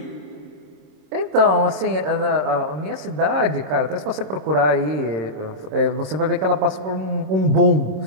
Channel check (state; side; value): late; left; 26 ms